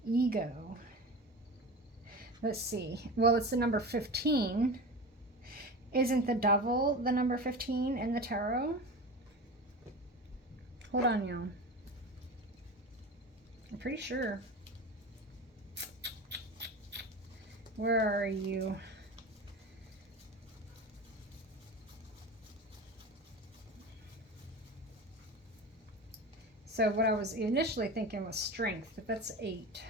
ego. Let's see. Well, it's the number 15. Isn't the devil the number 15 in the tarot? Hold on, y'all. I'm pretty sure. Where are you? So what I was initially thinking was strength, but that's 8.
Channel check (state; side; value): normal; both; correlation 0.30